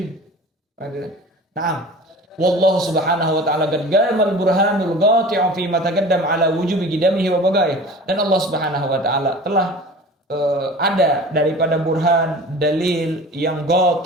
Nah, wallahu subhanahu wa ta'ala qad gamal burhanul qati'u fi ma taqaddam ala wujubi qidamihi wa bagaih. Dan Allah Subhanahu wa ta'ala telah ada daripada burhan, dalil yang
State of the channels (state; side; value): normal; both; correlation 0.39